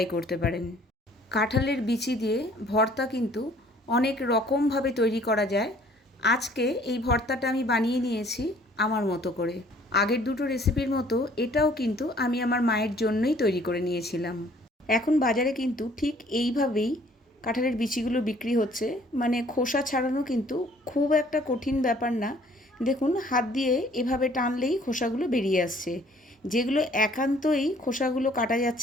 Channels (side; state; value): both; normal; correlation 0.57